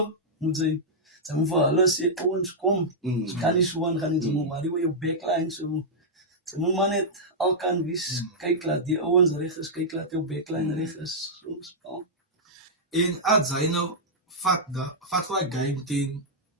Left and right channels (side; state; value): both; normal; correlation -0.08